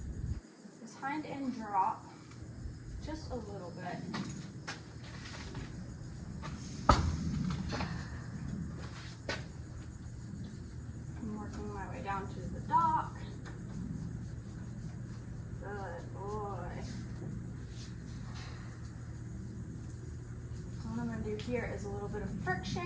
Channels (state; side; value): identical; both; correlation 1.00